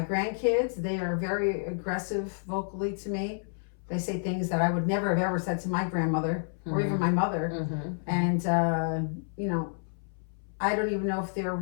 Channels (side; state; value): right; silent; 58 dB below the other